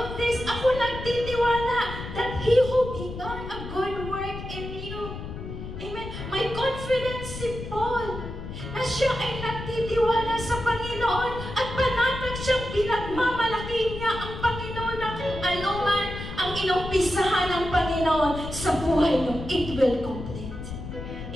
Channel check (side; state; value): left; noise; rumble, 9 dB below the sound